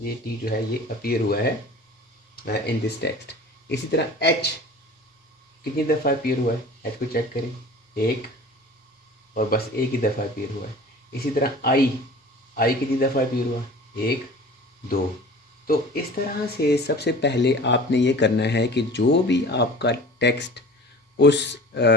टी जो है ये अपीयर हुआ है इन दिस टेक्स्ट। इसी तरह एच कितनी दफ़ा अपीयर हुआ है, एच को चेक करें, 1, और बस एक ही दफ़ा अपीयर हुआ है। इसी तरह आई कितनी दफ़ा अपीयर हुआ, 1, 2। तो इस तरह से सबसे पहले आपने ये करना है कि जो भी आपका टेक्स्ट उस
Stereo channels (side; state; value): both; normal; correlation 0.41